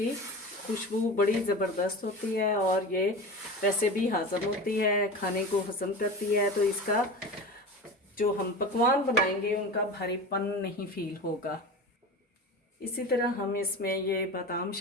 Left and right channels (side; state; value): both; normal; correlation 0.30